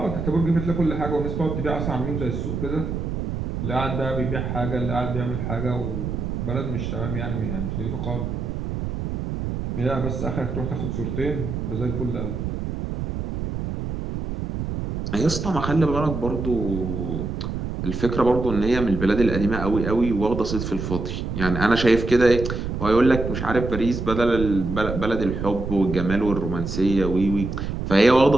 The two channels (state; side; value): noise; right; rumble, 4 dB below the sound